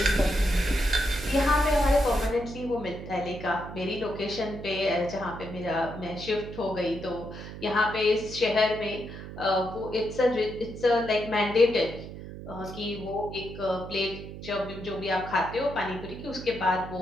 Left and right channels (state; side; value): noise; right; hum, 11 dB below the sound